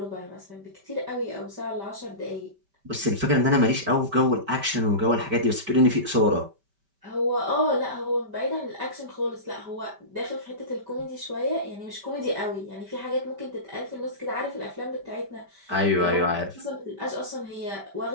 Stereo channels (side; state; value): left; late; 5.1 ms